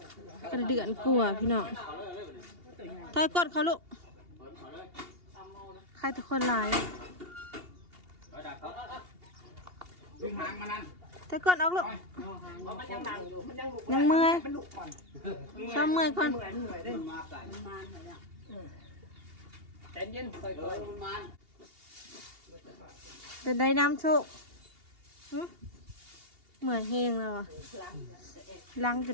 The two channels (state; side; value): late; left; 2.8 ms